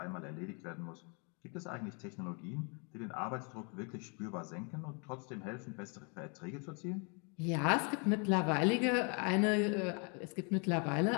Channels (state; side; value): quieter; right; 35.3 dB